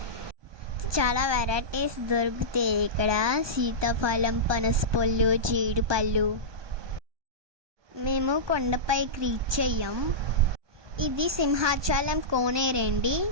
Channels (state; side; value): late; left; 1.2 ms